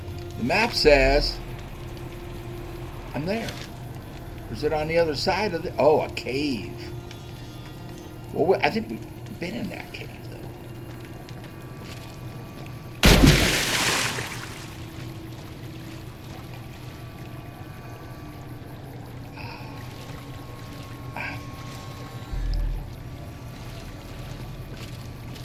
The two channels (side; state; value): both; identical; correlation 1.00